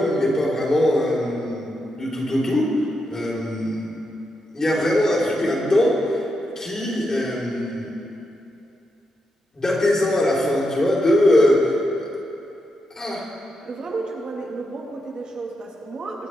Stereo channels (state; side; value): normal; both; correlation 0.84